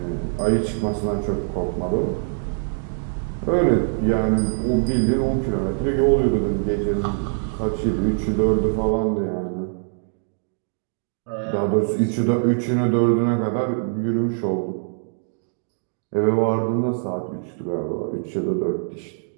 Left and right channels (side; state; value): left; silent; digital silence